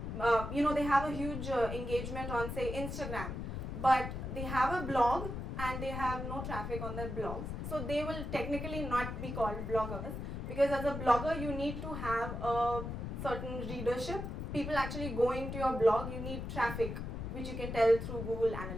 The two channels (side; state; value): left; noise; rumble, 5 dB below the sound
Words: they have a huge engagement on, say, Instagram, but they have a blog and they have no traffic on their blogs. So they will technically not be called bloggers because as a blogger, you need to have a certain readership. People actually going to your blog, you need traffic, which you can tell through Google